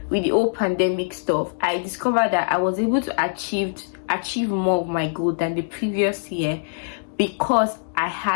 with the whole pandemic stuff, I discovered that I was able to achieve more of my goal than the previous year because I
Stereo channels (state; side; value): silent; right; digital silence